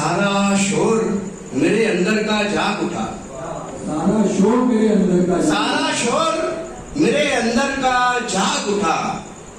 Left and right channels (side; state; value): both; identical; correlation 1.00